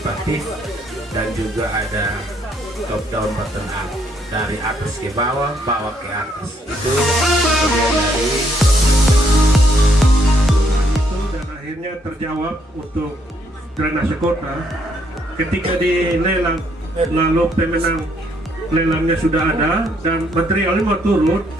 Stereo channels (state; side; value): normal; both; correlation 0.71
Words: dan juga ada top down bottom up, dari atas ke bawah, bawah ke atas. Itu dari dan akhirnya terjawab untuk drainase kota ketika dilelang, lalu pemenang lelangnya sudah ada dan materialnya mau turun,